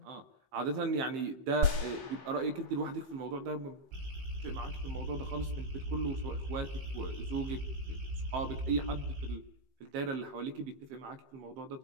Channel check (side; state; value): left; late; 15 ms